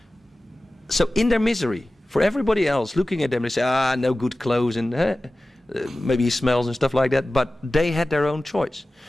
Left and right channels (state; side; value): normal; both; correlation 0.96